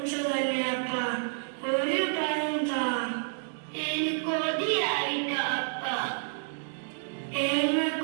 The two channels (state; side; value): silent; left; digital silence